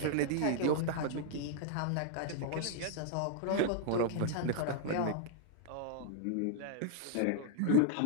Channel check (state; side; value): different; both; correlation -0.01